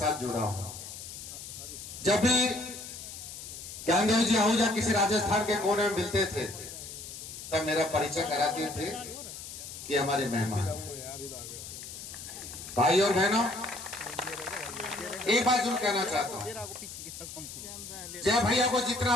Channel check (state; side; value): noise; left; hiss, 11 dB below the sound